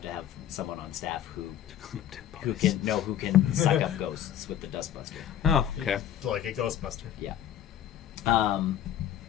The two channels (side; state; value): right; quieter; 10.7 dB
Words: to have someone on staff who can suck up ghosts with the dustbuster. Oh, okay. Like a Ghostbuster. Yeah.